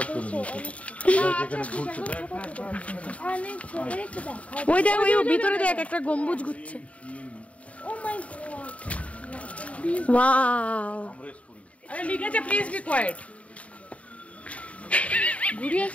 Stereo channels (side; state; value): right; late; 0.066 ms